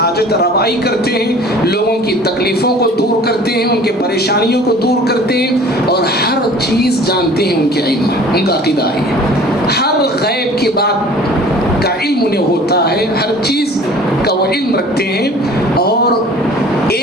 روائی کرتے ہیں، لوگوں کی تکلیفوں کو دور کرتے ہیں، ان کے پریشانیوں کو دور کرتے ہیں، اور ہر چیز جانتے ہیں ان کے علم، ان کا عقیدہ ہے ہر غیب کی بات کا علم انہیں ہوتا ہے، ہر چیز کا وہ علم رکھتے ہیں، اور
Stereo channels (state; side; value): normal; both; correlation 0.47